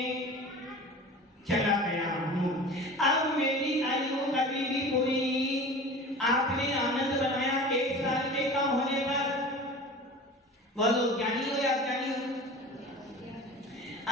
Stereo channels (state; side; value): normal; both; correlation 0.37